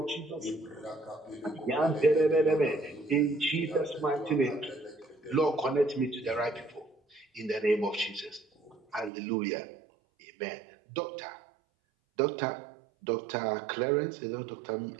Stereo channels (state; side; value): drops out; left; at 9.1 s